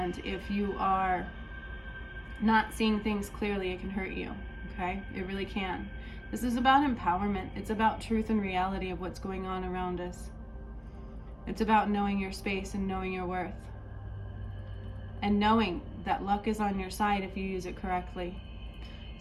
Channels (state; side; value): identical; both; correlation 1.00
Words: if you are not seeing things clearly, it can hurt you, okay? It really can. This is about empowerment. It's about truth and reality of what's going on around us. It's about knowing your space and knowing your worth. And knowing that luck is on your side if you use it correctly.